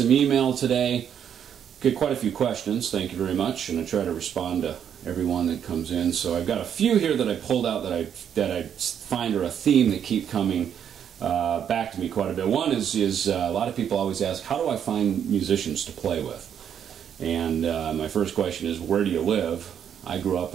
email today. Get quite a few questions, thank you very much, and I try to respond to everyone that comes in. So I've got a few here that I pulled out that I find are a theme that keep coming back to me quite a bit. One is a lot of people always ask, how do I find musicians to play with? And my first question is, where do you live? I grew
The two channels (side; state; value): left; quieter; 8.7 dB